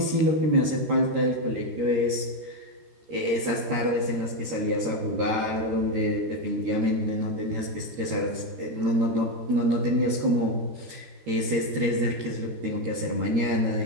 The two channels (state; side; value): late; left; 13 ms